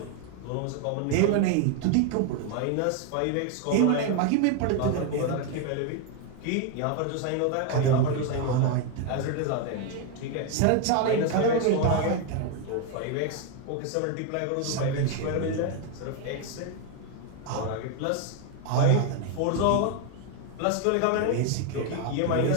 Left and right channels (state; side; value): different; both; correlation 0.01